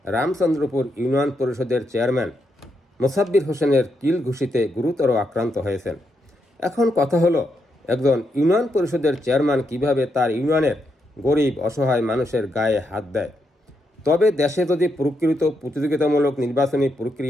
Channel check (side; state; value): both; normal; correlation 0.81